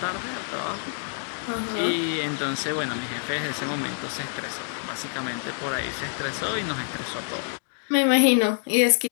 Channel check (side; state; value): right; silent; 61 dB below the other